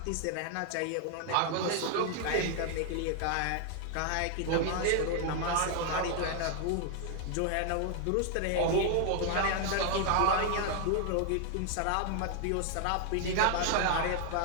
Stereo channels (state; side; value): different; both; correlation 0.00